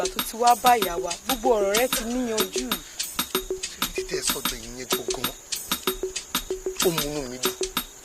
tó ti wá bá ìyá wa gbogbo ọ̀rọ̀ rẹ ti níyanjú. títẹ sọ́dọ̀ ìyẹn gbọngàn ó múnú mi dùn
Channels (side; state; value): both; identical; correlation 1.00